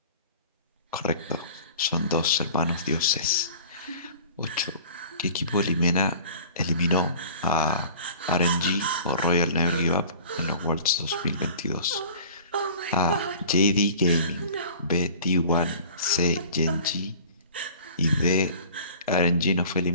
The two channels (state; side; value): inverted; both; correlation -0.44